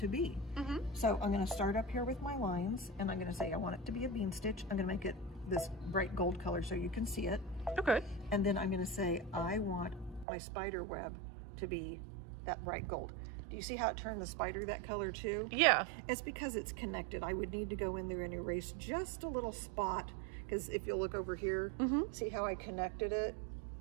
be. So I'm going to start up here with my lines, and I'm going to say I want it to be a bean stitch. I'm going to make it this bright gold color so you can see it. Okay. And then I'm going to say I want my spider web to be that bright gold. Do you see how it turned the spider that color too? Yeah. It's because it's connected. I would need to go in there and erase just a little spot, because if you'll look over here, see how I connected it?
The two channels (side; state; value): left; drops out; at 10.2 s